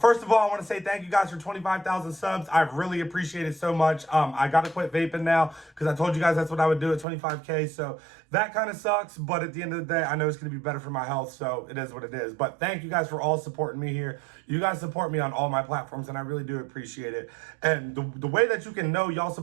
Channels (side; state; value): left; drops out; at 7.1 s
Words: First of all, I want to say thank you guys for 25,000 subs. I really appreciate it so much. I got to quit vaping now because I told you guys that's what I would do at 25K. So that kind of sucks. But at the end of the day, I know it's going to be better for my health. So it is what it is. But thank you guys for all supporting me here. You guys support me on all my platforms, and I really do appreciate it. And the way that you can know y'all